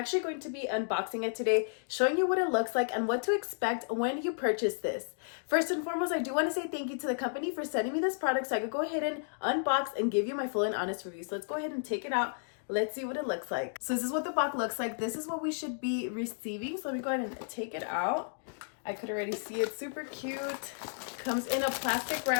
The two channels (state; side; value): silent; right; digital silence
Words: going to be unboxing it today, showing you what it looks like and what to expect when you purchase this. First and foremost, I do want to say thank you to the company for sending me this product so I could go ahead and unbox and give you my full and honest review. So let's go ahead and take it out. Let's see what it looks like. So this is what the box looks like. This is what we should be receiving. So let me go ahead and take it out. I could already see it. Super cute. Comes in a plastic